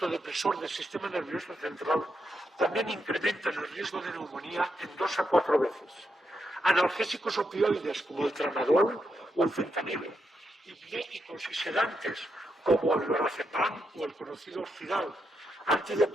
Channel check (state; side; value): normal; both; correlation 0.82